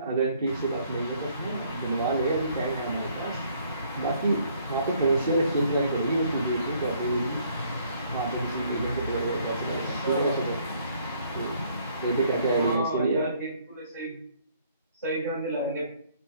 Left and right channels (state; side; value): inverted; both; correlation -0.64